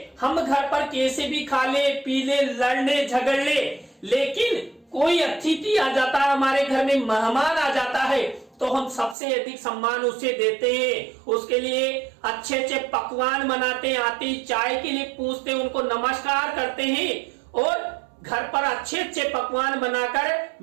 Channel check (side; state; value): left; drops out; at 9.2 s